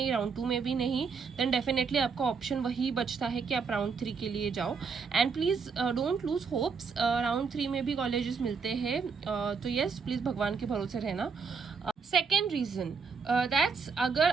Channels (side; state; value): left; quieter; 5.4 dB